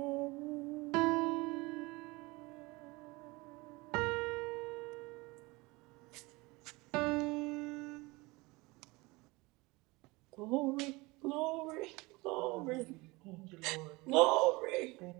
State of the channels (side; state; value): left; quieter; 23.6 dB